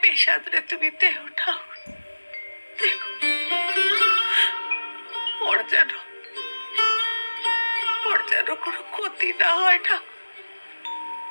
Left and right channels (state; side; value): inverted; both; correlation -1.00